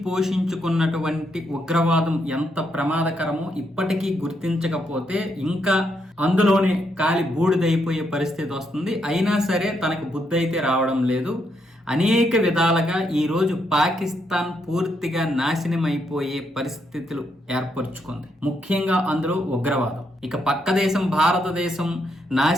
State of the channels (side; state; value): both; normal; correlation 0.78